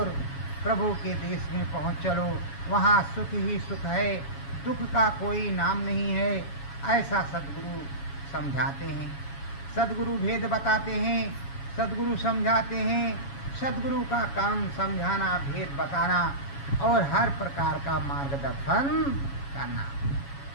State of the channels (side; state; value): right; late; 7.2 ms